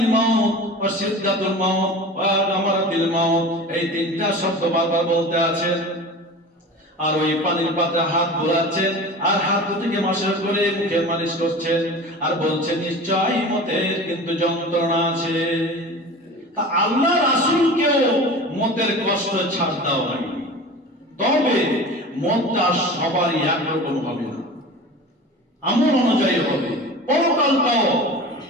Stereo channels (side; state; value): both; normal; correlation 0.36